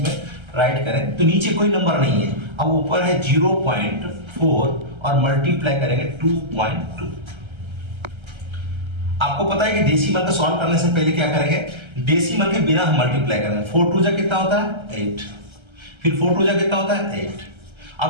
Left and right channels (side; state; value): left; late; 1.3 ms